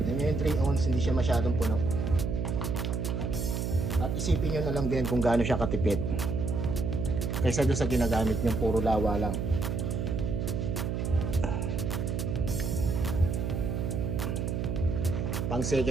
Yung 3 ounce hindi siya masyadong puno. At isipin nyo na lang din kung gaano siya katipid kaysa doon sa ginagamit nyo puro lawa lang. Pang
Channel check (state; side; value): noise; right; hum, 1 dB below the sound